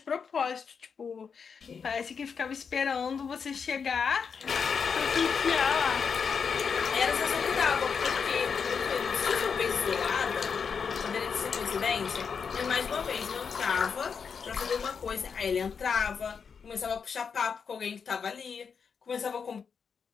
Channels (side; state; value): right; quieter; 6.1 dB